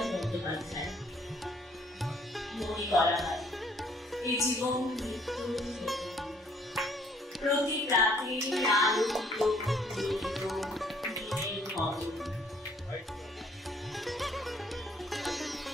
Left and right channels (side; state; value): both; normal; correlation 0.63